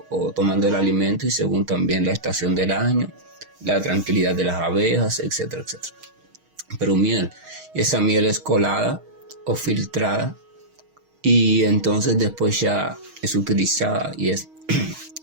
o tomando el alimento y según también la estación del año, la tranquilidad de las abejas, etcétera, etcétera. Pero miel, y esa miel es colada o filtrada y entonces después ya es utilizada y es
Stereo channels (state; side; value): late; left; 6.4 ms